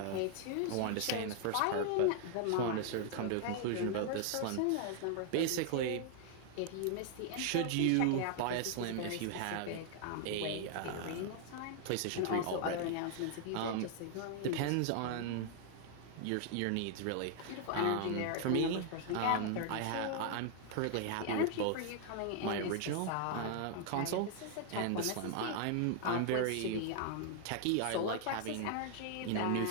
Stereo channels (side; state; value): both; different; correlation 0.00